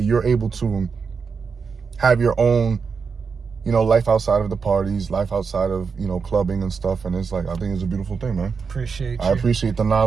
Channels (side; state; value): left; quieter; 5.5 dB